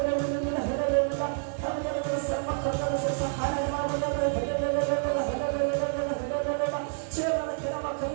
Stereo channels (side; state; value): left; silent; 59 dB below the other